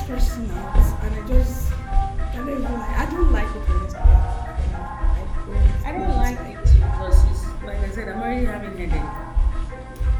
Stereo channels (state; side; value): identical; both; correlation 1.00